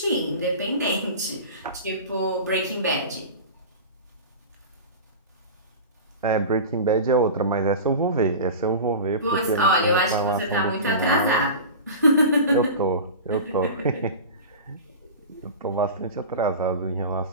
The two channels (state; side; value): inverted; both; correlation -0.31